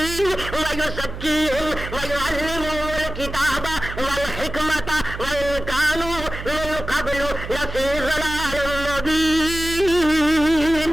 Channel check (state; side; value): noise; right; hum, 9 dB below the sound